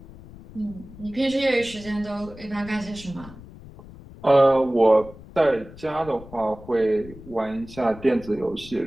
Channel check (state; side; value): noise; left; rumble, 18 dB below the sound